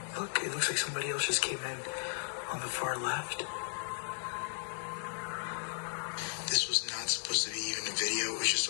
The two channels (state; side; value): silent; right; digital silence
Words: Look, it looks like somebody else just came in on the far left. This was not supposed to be even a video. It was just